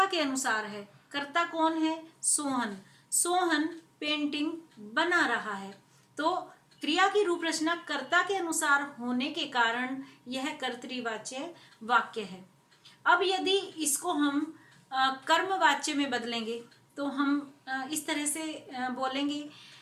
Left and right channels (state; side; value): identical; both; correlation 1.00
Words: के अनुसार है। कर्ता कौन है? सोहन। सोहन पेंटिंग बना रहा है। तो क्रिया की रूप रचना कर्ता के अनुसार होने के कारण यह कर्तृवाच्य वाक्य है। अब यदि इसको हम कर्मवाच्य में बदलेंगे तो हम इस तरह से बोलेंगे,